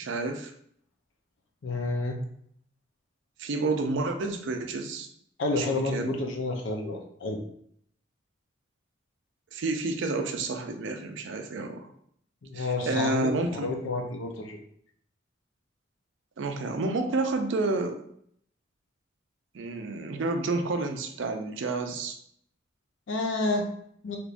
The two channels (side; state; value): both; normal; correlation 0.28